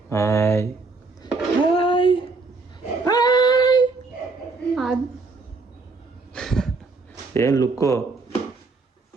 ಹಾಯ್ ಏನು ಲುಕ್ಕು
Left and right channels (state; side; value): quieter; left; 3.8 dB